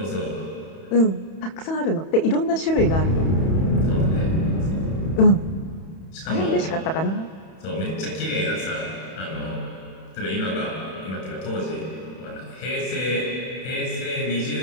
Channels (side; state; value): right; late; 31 ms